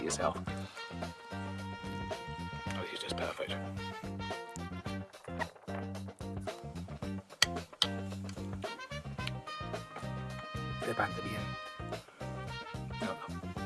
yourself. Oh, this is just perfect. They're back to the end. No,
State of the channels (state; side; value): identical; both; correlation 1.00